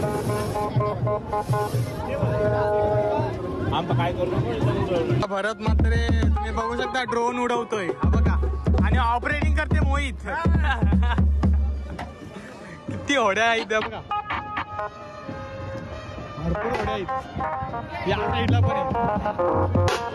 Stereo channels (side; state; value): both; identical; correlation 1.00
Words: आम्ही काय करतो. भरत मात्र तुम्ही बघू शकता ड्रोन उडवतोय हा बघा आणि ऑपरेटिंग करते मोहित. किती होड्या आहेत बघा, भरपूर होड्या आहेत या साईडला पण आहे.